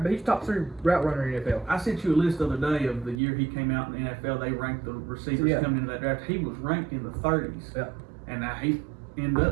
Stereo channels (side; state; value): left; drops out; at 3.2 s